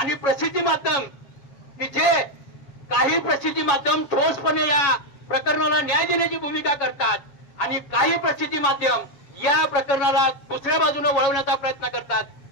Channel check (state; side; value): late; right; 7.2 ms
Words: प्रसिद्धी माध्यम की जे काही प्रसिद्धी माध्यम ठोसपणे या प्रकरणाला न्याय देण्याची भूमिका करतात आणि काही प्रसिद्धी माध्यम या प्रकरणाला दुसऱ्या बाजूने वळवण्याचा प्रयत्न करतात।